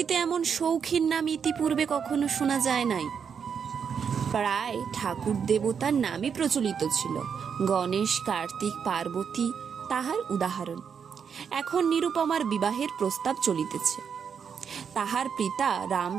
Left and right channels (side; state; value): left; quieter; 6.9 dB